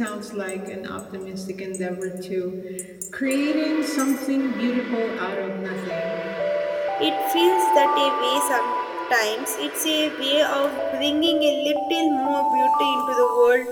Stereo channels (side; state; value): both; identical; correlation 1.00